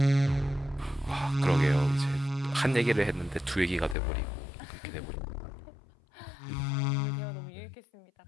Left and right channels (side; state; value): right; drops out; at 4.0 s